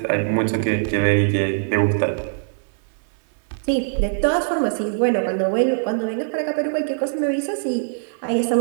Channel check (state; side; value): silent; left; digital silence